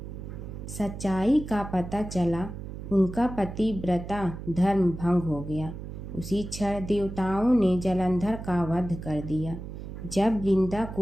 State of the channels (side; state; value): right; noise; hum, 9 dB below the sound